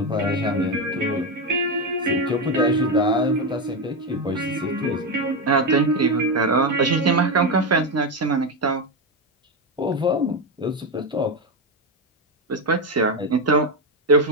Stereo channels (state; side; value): normal; both; correlation 0.11